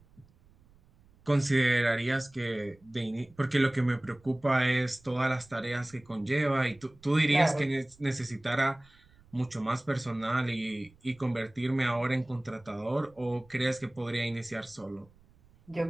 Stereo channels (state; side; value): noise; right; rumble, 29 dB below the sound